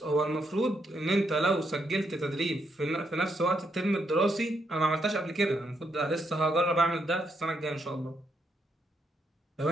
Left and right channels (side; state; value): both; normal; correlation 0.77